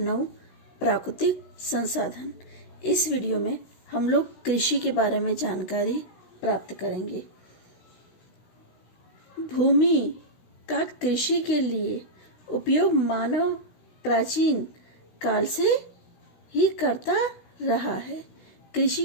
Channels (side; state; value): right; late; 16 ms